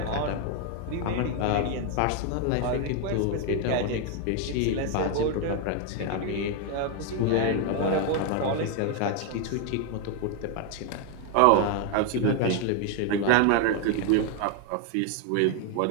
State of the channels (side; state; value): both; different; correlation 0.01